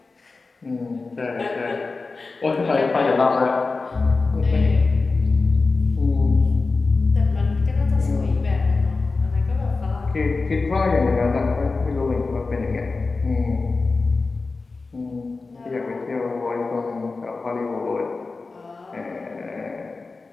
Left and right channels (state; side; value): quieter; right; 3.9 dB